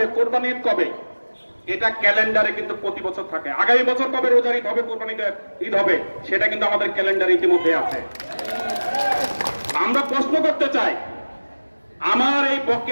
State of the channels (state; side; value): inverted; both; correlation -1.00